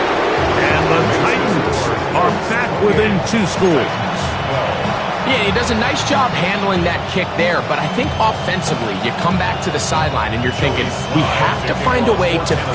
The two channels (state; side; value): identical; both; correlation 1.00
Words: And the Titans are back within 2 scores. Yeah, he does a nice job handling that kick there, but I think offensively, you come back to the sideline and you're thinking, we have to find a way to